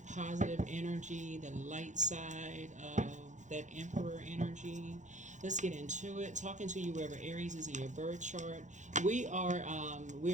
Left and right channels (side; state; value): left; late; 0.35 ms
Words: positive energy, the light side of that emperor energy. Let's get into it. Talking to you wherever Aries is in your birth chart. We're